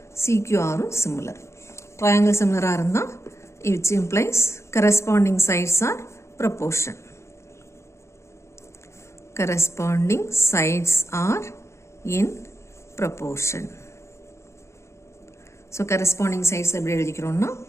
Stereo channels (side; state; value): right; late; 0.14 ms